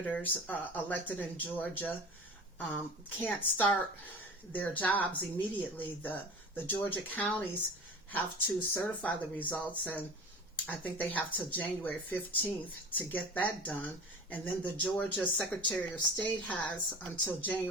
elected in Georgia can't start their jobs immediately. The Georgia counties have to certify the results, and I think they have till January 15th to get that done. And then the Georgia Secretary of State has until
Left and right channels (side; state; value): both; normal; correlation 0.36